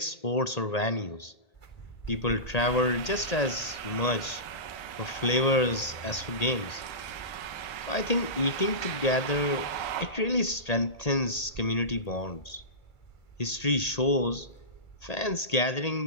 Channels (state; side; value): late; right; 1.8 ms